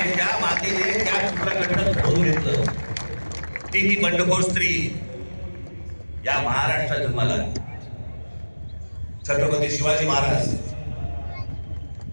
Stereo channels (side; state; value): both; inverted; correlation -1.00